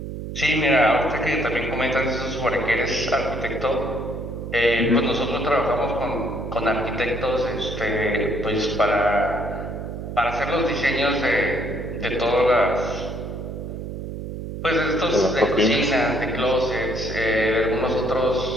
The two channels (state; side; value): noise; right; hum, 7 dB below the sound